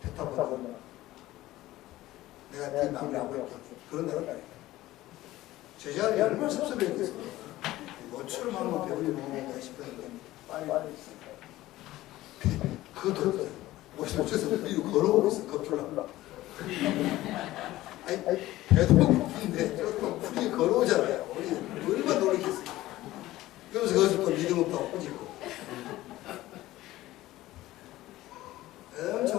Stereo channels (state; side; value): quieter; right; 16.3 dB